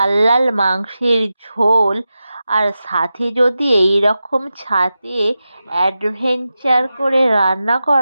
লাল মাংসের ঝোল, আর সাথে যদি এই রকম ছাদে অ্যাডভেঞ্চার করে রান্না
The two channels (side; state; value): both; inverted; correlation -0.92